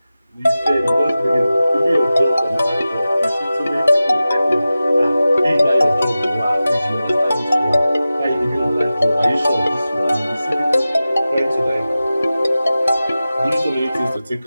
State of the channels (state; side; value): inverted; both; correlation -0.95